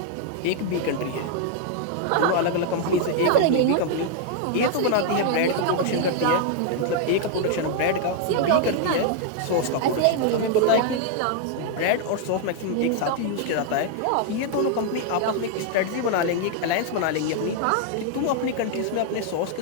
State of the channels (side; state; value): both; different; correlation 0.00